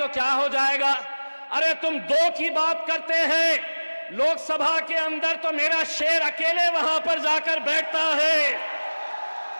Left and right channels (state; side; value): inverted; both; correlation -1.00